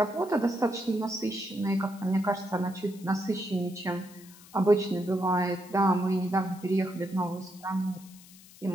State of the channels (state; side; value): noise; left; hiss, 22 dB below the sound